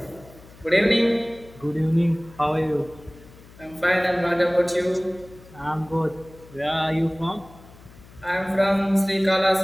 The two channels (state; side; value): noise; left; hum, 22 dB below the sound